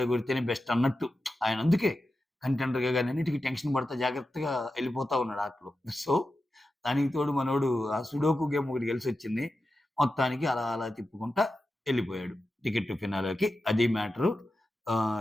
కొడితేనే బెస్ట్" అన్నట్టు. ఆయన అందుకే కంటెండర్‌గా గాని అన్నిటికి టెన్షన్ పడతా జాగ్రత్తగా ఎళ్ళిపోతా ఉన్నాడు ఆటలో. సో, దానికి తోడు మనోడు ఆ సుడోకు గేమ్ ఒకటి గెలిసొచ్చింది. మొత్తానికి అలా అలా తిప్పుకుంటా ఎళ్ళిపోయాడు. టికెట్ ఫినాలేకి అది మ్యాటరు.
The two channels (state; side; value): normal; both; correlation 0.91